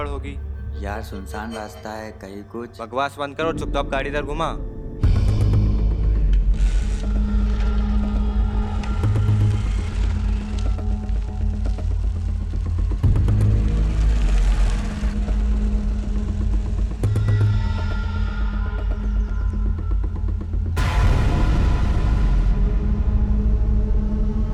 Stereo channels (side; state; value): both; identical; correlation 1.00